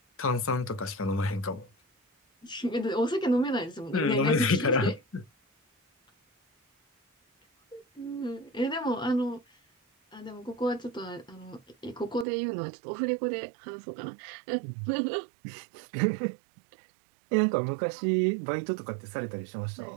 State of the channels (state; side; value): drops out; left; at 12.2 s